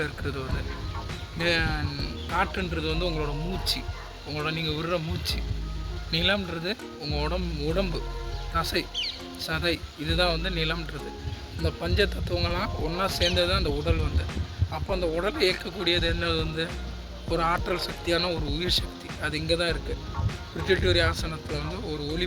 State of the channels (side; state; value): both; identical; correlation 1.00